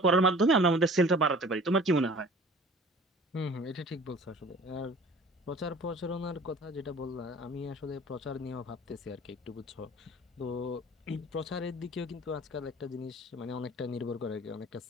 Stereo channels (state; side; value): normal; both; correlation 0.46